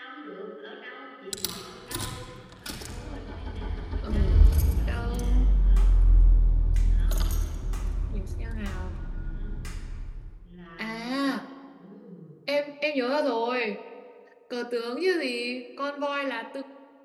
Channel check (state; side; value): identical; both; correlation 1.00